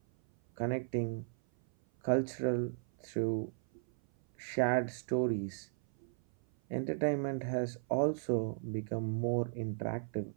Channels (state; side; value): silent; left; 54 dB below the other